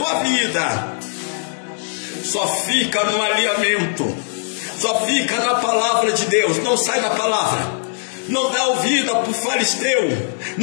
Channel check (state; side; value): silent; right; 66 dB below the other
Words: vida. Só fica no alinhamento, só fica na palavra de Deus, não sai da palavra. Não dá ouvida para o fariseu,